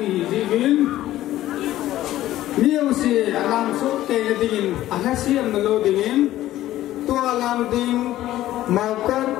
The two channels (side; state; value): right; quieter; 14.3 dB